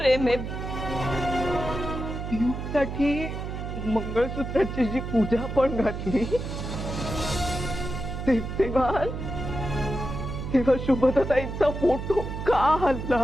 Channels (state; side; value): noise; right; hum, 6 dB below the sound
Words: आहे. पिऊसाठी मंगळसूत्राची जी पूजा पण घातली तेव्हा शुभदाताईचा फोटो का